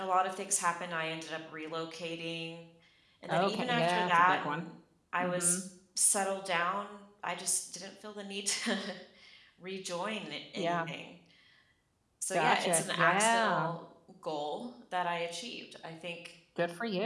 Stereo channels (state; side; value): identical; both; correlation 1.00